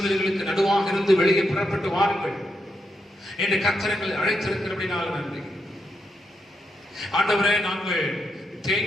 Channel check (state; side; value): normal; both; correlation 0.83